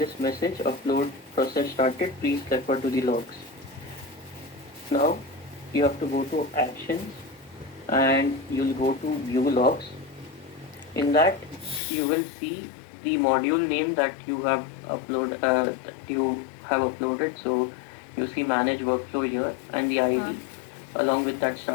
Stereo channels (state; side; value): drops out; right; at 11.8 s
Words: message, upload process started, please refer to the logs. Now you have to go to actions and you'll go to view logs. In that you will see the module name that you have uploaded. So you see manage workflow here and the ID along with that